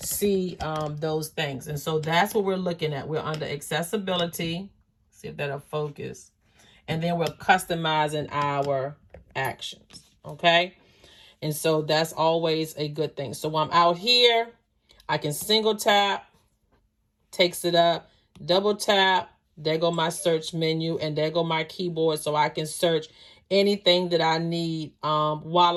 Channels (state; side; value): identical; both; correlation 1.00